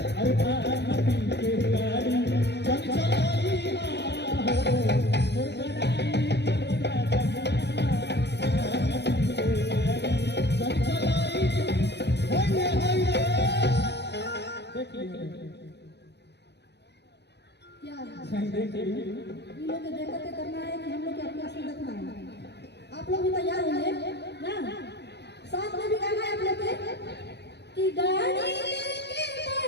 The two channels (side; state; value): right; late; 0.49 ms